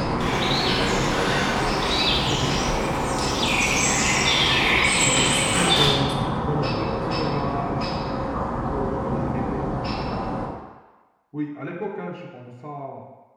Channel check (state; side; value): identical; both; correlation 1.00